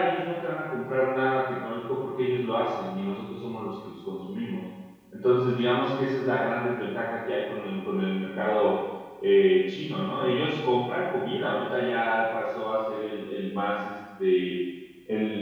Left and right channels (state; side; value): identical; both; correlation 1.00